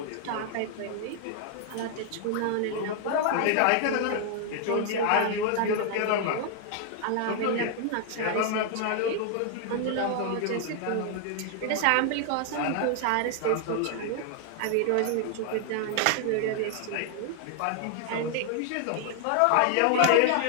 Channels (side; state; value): both; different; correlation 0.00